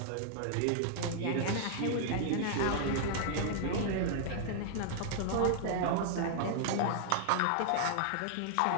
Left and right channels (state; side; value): different; both; correlation -0.01